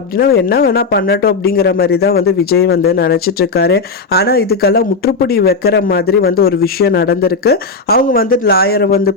என்ன வேணா பண்ணட்டும் அப்படிங்கிற மாதிரி தான் வந்து விஜய் வந்து நினைச்சிட்டு இருக்காரு. ஆனா இதுக்கெல்லாம் முற்றுப்புடி வைக்கிற மாதிரி வந்து ஒரு விஷயம் நடந்திருக்கு. அவங்க வந்து லாயரை வந்து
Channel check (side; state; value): right; quieter; 4.2 dB